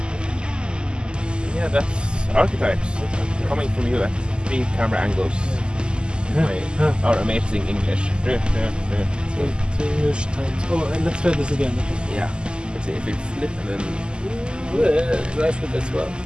Yeah, that's Archetypes. Coming from you at 3 camera angles. Our amazing English. 3 English times. Oh, and let's try this again. Yeah. Let's see if we flip and then... Do I flip as well?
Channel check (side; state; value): left; late; 0.048 ms